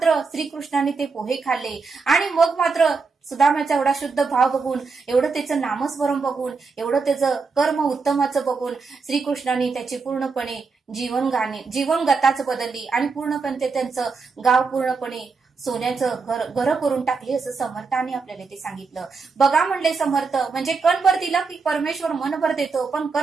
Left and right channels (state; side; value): quieter; left; 4.7 dB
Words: श्रीकृष्णाने ते पोहे खाल्ले. आणि मग मात्र सुदामाचा एवढा शुद्ध भाव बघून, एवढं त्याचं नामस्मरण बघून, एवढं त्याचं कर्म उत्तमाचं बघून श्रीकृष्णाने त्याची पूर्णपणे जीवनगताच बदलली आणि पूर्णपणे त्यांचं गाव पूर्णपणे सोन्याचं घर करून टाकली असं समर्थांनी आपल्याला ते सांगितलं. बघा म्हणले समर्थ, म्हणजे कणभर दिला की परमेश्वर मनभर देतो, पण